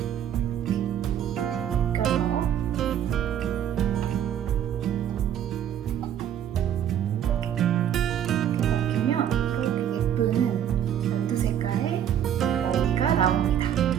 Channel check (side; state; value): left; quieter; 9.9 dB